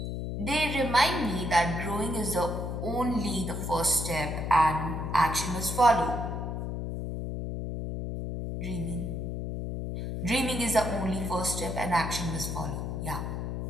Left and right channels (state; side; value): noise; left; hum, 4 dB below the sound